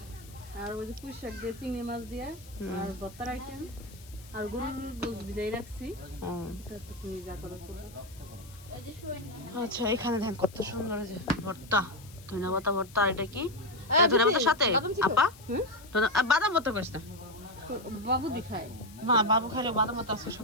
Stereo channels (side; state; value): left; noise; hiss, 21 dB below the sound